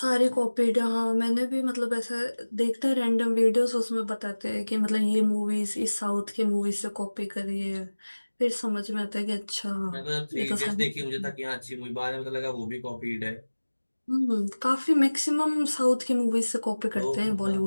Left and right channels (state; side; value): inverted; both; correlation -1.00